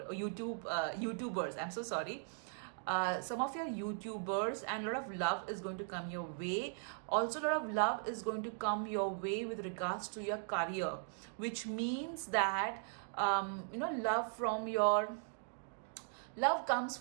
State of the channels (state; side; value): silent; left; digital silence